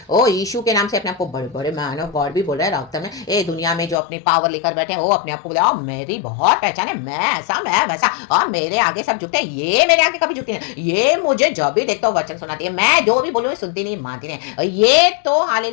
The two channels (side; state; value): right; drops out; at 4.0 s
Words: ओ यीशु के नाम से अपने आपको बड़े बड़े मैन ऑफ गॉड भी बोल रहे हैं रक्तम में, ये दुनिया में जो अपनी पावर लेकर बैठे हैं, वो अपने आपको बोला मेरी बहुत पहचान है, मैं ऐसा मैं वैसा, और मेरे आगे सब झुकते हैं, ये मेरे आगे कभी झुकती नहीं, ये मुझे जब भी देखता हूँ वचन सुनाती है, मैं जो भी बोलूँ सुनती नहीं मानती नहीं, ये तो